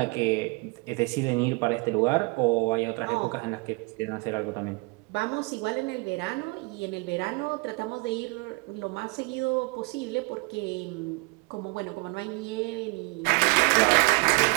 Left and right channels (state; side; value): quieter; left; 29.1 dB